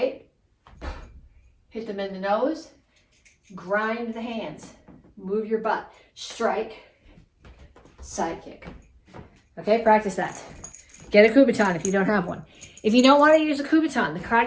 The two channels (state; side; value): identical; both; correlation 1.00